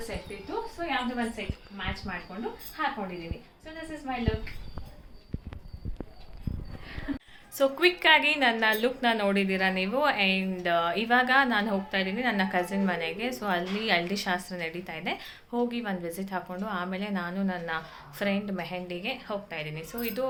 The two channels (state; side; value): identical; both; correlation 1.00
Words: ಸೆಟ್ ಇತ್ತು, ಸೊ ಯಾವುದೋ ಒಂದು ಸೆಟ್ ಮ್ಯಾಚ್ ಮಾಡಿಕೊಂಡು ಹಾಕೊಂಡಿದ್ದೀನಿ. So this is my look. So ಕ್ವಿಕ್ಕಾಗಿ ನನ್ನ ಲುಕ್ನ ನೋಡಿದ್ದೀರಾ ನೀವು. ಆ್ಯಂಡ್ ಇವಾಗ ನಾನು ಹೋಗ್ತಾ ಇದ್ದೀನಿ ನನ್ನ ಕಸಿನ್ ಮನೆಗೆ. ಸೊ ಅಲ್ಲಿ ಹಳದಿ ಶಾಸ್ತ್ರ ನಡೀತಾ ಇದೆ, ಹೋಗಿ ಒಂದು ವಿಸಿಟ್ ಹಾಕ್ಕೊಂಡು ಆಮೇಲೆ ನಾನು ನನ್ನ ಫ್ರೆಂಡ್ ಮೆಹಂದಿಗೆ ಹೋಗ್ತಾ ಇದ್ದೀನಿ. ಸೊ ಇದು